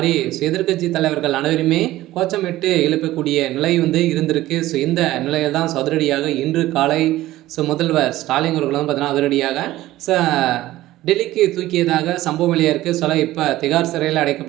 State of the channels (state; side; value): quieter; left; 15.9 dB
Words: எதிர்க்கட்சி தலைவர்கள் அனைவருமே கோச்சமிட்டு எழுப்பக்கூடிய நிலை இருந்திருக்கு. இந்த நிலையில் தான் அதிரடியாக இன்று காலை முதல்வர் ஸ்டாலின் அவர்கள் பார்த்தீங்கன்னா அதிரடியாக டெல்லிக்கு தூக்கியதாக சம்பவம் வெளியாக இருக்குது. இப்போ திகார் சிறையில்